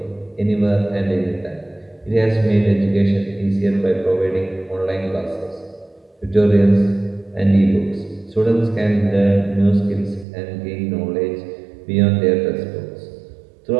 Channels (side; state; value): left; drops out; at 10.2 s